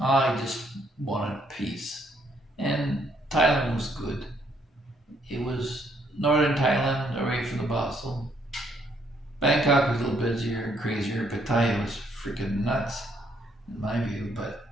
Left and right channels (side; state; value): both; normal; correlation 0.69